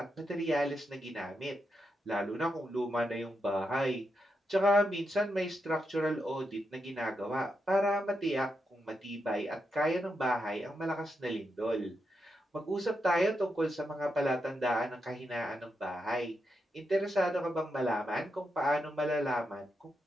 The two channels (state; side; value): normal; both; correlation 0.84